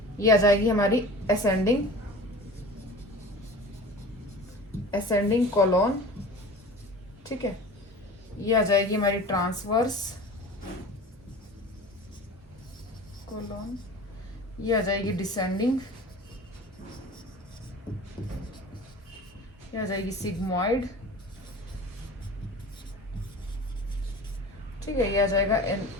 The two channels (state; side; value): normal; both; correlation 0.38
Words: ये आ जाएगी हमारी असेंडिंग कोलोन। ठीक है, ये आ जाएगी हमारी ट्रांसवर्स कोलोन, ये आ जाएगी डिसेंडिंग, ये आ जाएगी सिग्मोइड। ठीक है, ये आ जाएगा